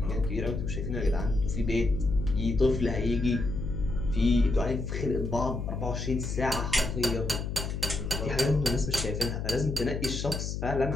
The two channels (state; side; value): noise; left; hum, 4 dB below the sound